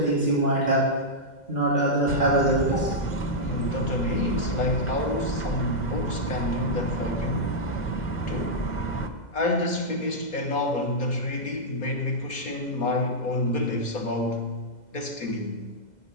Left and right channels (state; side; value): late; right; 2.0 ms